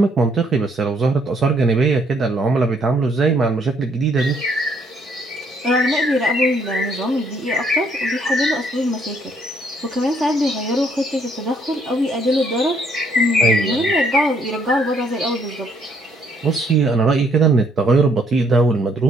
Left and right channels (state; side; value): normal; both; correlation 0.67